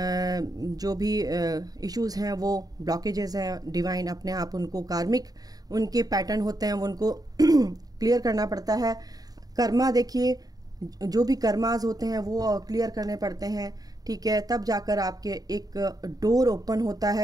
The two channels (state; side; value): late; left; 0.18 ms